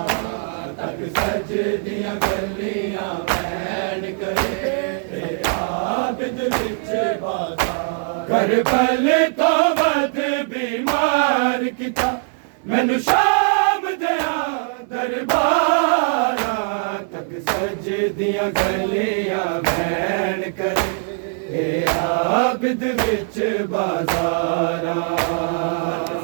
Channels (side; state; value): left; silent; 56 dB below the other